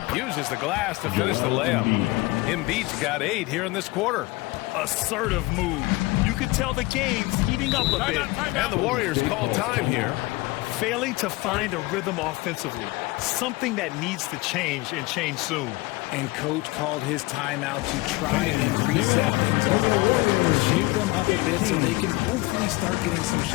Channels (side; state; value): right; quieter; 21.9 dB